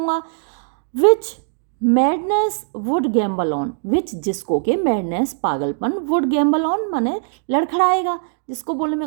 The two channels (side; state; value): left; silent; digital silence